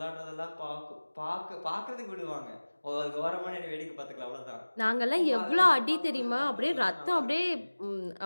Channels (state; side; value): inverted; both; correlation -1.00